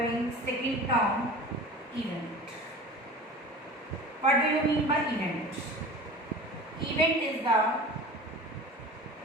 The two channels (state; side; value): normal; both; correlation 0.37